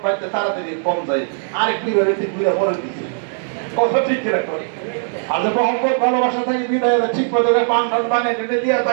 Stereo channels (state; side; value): silent; left; 66 dB below the other